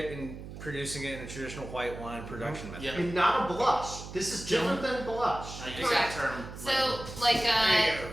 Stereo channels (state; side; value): noise; right; hum, 12 dB below the sound